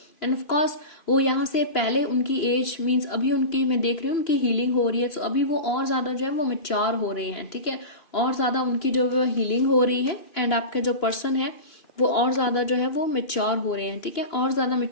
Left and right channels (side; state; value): right; late; 2.9 ms